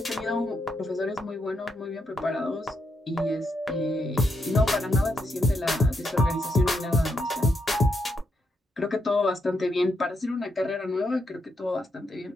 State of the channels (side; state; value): both; normal; correlation 0.80